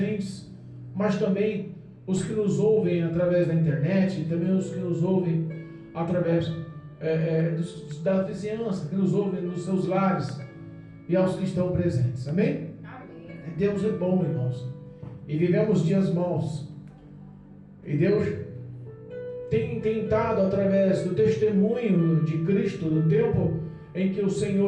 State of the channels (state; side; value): identical; both; correlation 1.00